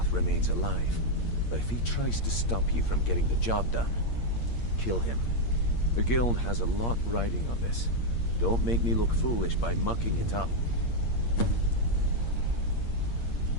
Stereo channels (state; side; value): late; right; 8.6 ms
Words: remains alive, but if he tries to stop you from getting the job done, kill him. The guild has a lot riding on this. Don't make me look foolish by mucking it up.